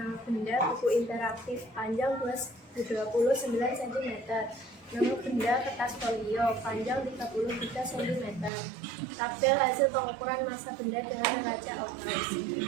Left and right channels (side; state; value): left; drops out; at 8.5 s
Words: benda, buku interaktif, panjang 29 cm. Nama benda, kertas folio, panjang 33 cm. Tabel hasil pengukuran massa benda dengan neraca Oghuz.